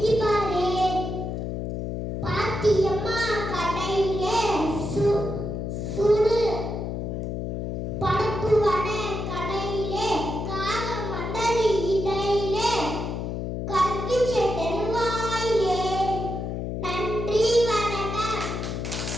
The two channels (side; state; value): left; noise; hum, 3 dB below the sound